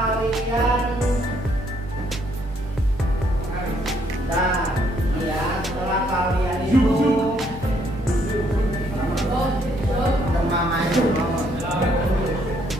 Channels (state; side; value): normal; both; correlation 0.69